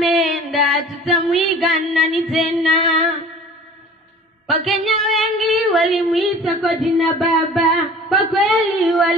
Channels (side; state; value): both; normal; correlation 0.44